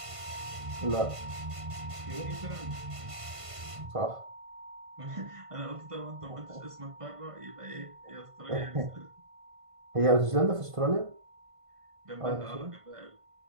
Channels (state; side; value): late; left; 1.5 ms